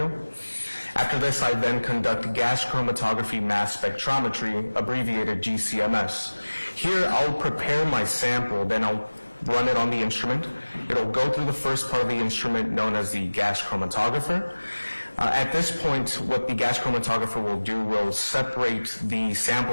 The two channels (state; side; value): inverted; both; correlation -1.00